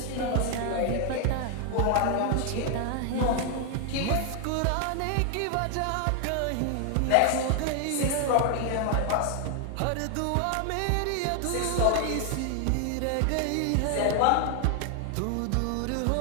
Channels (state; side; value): different; both; correlation 0.00